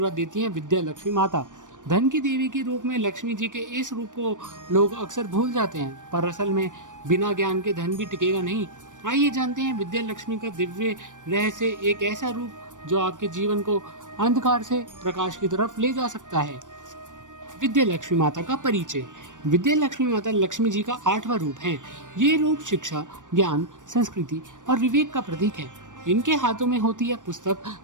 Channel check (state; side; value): late; left; 0.87 ms